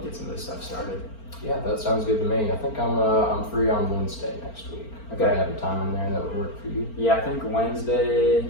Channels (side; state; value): right; late; 4.4 ms